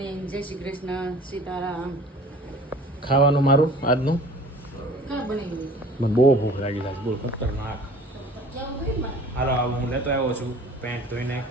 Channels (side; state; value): both; normal; correlation 0.46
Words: જય શ્રી કૃષ્ણ. સીતારામ. ખાવાનું મારું આજનું કા બની મને બહુ ભૂખ લાગી છે. બોલ ખતરનાક. હાલો હું લેતો આવ્યો છું પેન્ટ ધોઈને.